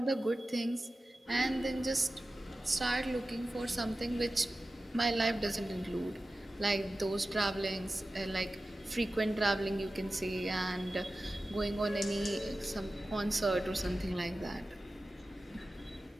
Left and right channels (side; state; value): both; normal; correlation 0.94